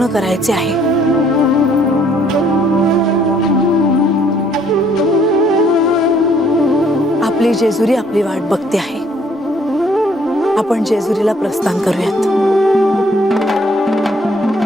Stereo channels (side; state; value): both; normal; correlation 0.63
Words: करायचे आहे. आपली जेजुरी आपली वाट बघते आहे. आपण जेजुरीला प्रस्थान करूयात.